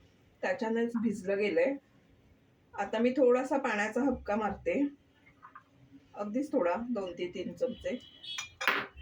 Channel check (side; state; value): both; identical; correlation 1.00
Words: त्याच्यानेच भिजलं गेलंय. आता मी थोडासा पाण्याचा हबका मारते, अगदीच थोडा, 2 ते 3 चमचे.